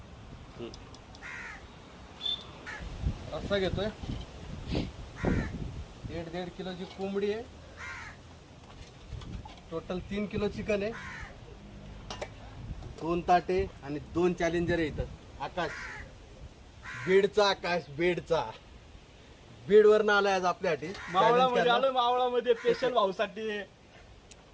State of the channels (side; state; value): both; identical; correlation 1.00